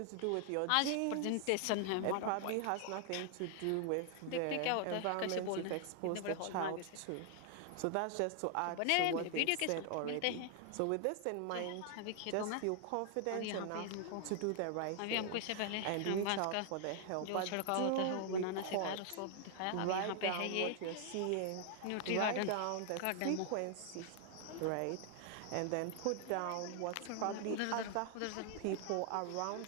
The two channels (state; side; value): different; both; correlation 0.00